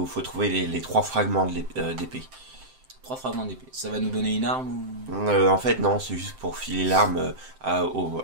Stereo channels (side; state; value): left; late; 7.7 ms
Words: trouver les trois fragments d'épée. 3 fragments d'épée. Ça va nous donner une arme ou... En fait, non, c'est juste pour filer l'arme à